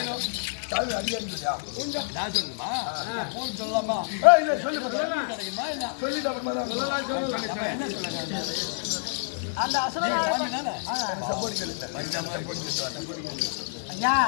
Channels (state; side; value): silent; right; digital silence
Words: நான் சொல்லுமா? போன் சொல்லலாமா? என்ன சொல்லுங்க? அந்த ஐயா